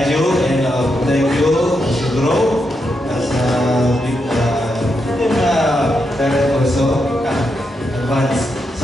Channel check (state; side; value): normal; both; correlation 0.83